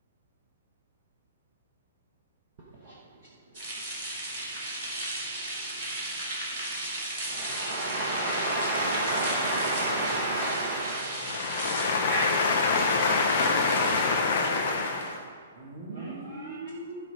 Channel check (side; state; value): both; inverted; correlation -0.44